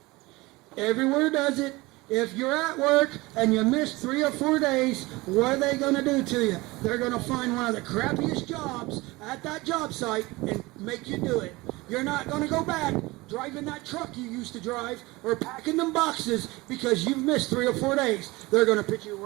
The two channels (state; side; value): quieter; left; 21.9 dB